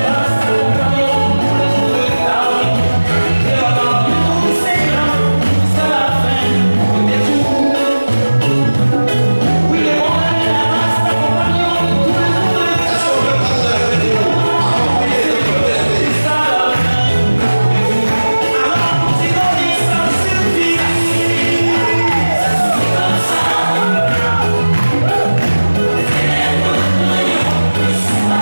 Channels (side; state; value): both; inverted; correlation -1.00